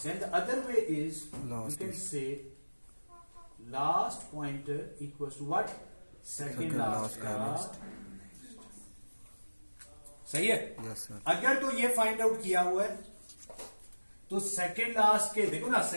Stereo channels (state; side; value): inverted; both; correlation -1.00